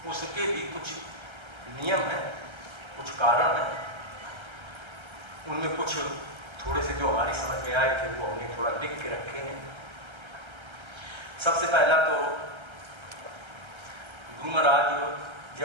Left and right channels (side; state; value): left; late; 1.3 ms